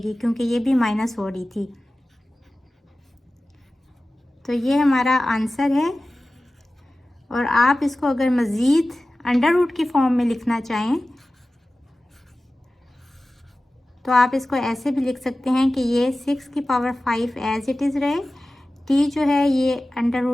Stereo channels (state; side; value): normal; both; correlation 0.96